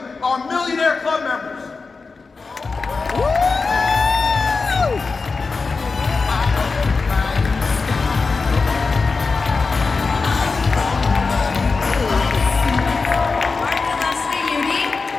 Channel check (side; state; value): right; quieter; 4.3 dB